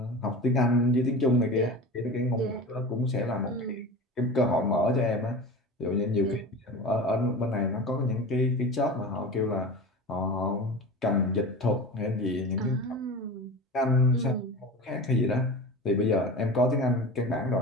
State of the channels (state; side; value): normal; both; correlation 0.32